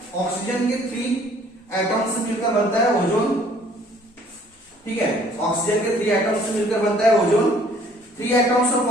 ऑक्सीजन के 3 एटम से मिलकर बनता है ओजोन, ठीक है। ऑक्सीजन के 3 एटम से मिलकर बनता है ozone. 3 atoms of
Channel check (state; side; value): normal; both; correlation 0.58